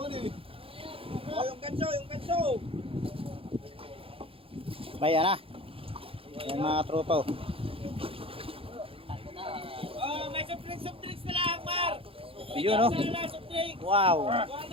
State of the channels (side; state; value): left; late; 0.27 ms